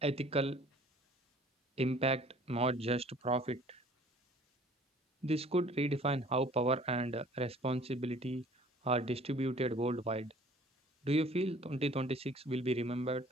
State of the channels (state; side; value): normal; both; correlation 0.52